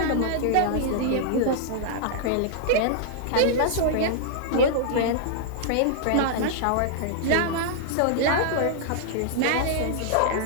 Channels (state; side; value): different; both; correlation -0.01